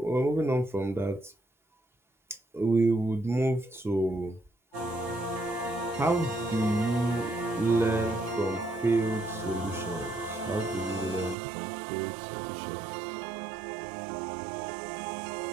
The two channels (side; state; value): left; drops out; at 11.4 s